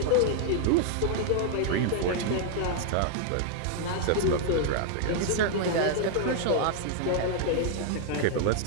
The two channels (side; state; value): both; different; correlation 0.00